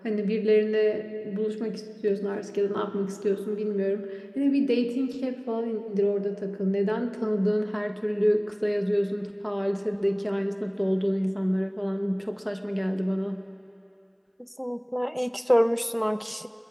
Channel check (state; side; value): identical; both; correlation 1.00